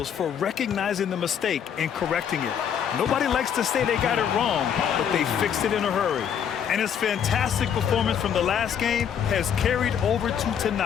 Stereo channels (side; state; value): right; quieter; 8.3 dB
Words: for recognizing the mistake and correcting it. Nobody likes to say they got it wrong, but they fixed it in a hurry. And his fantastic performance from the last game has carried over to